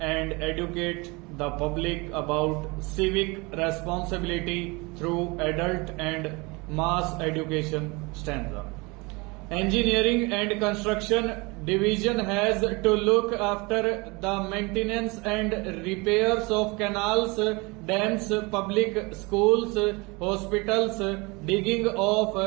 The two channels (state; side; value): quieter; left; 26.2 dB